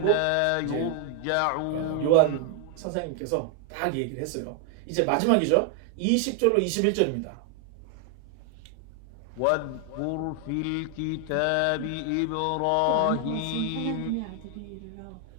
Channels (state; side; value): different; both; correlation 0.00